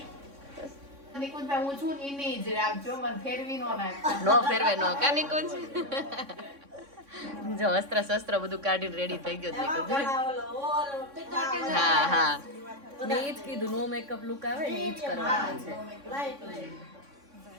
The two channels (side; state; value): left; late; 3.6 ms